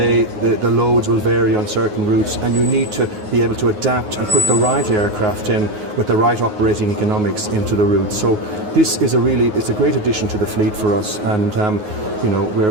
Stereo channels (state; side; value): late; left; 9.5 ms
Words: the loads will vary on certain routes, and you need to be able to adapt and put the right aircraft in with the right operating economics into the route. So this is it's a great addition to the fleet for us, and you know,